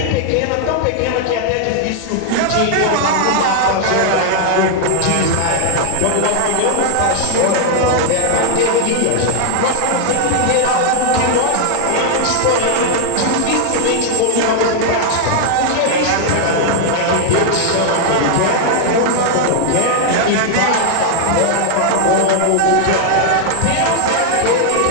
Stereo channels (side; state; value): both; different; correlation 0.00